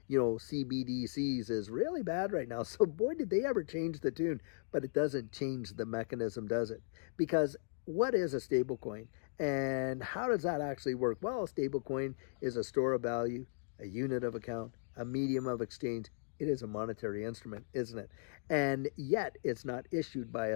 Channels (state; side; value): silent; right; digital silence